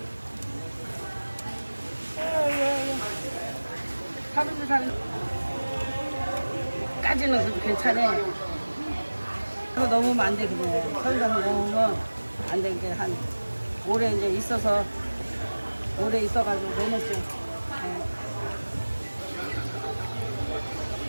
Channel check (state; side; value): inverted; both; correlation -1.00